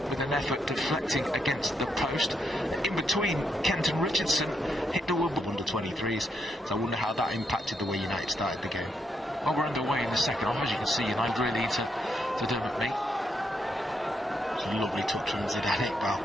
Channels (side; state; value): both; normal; correlation 0.79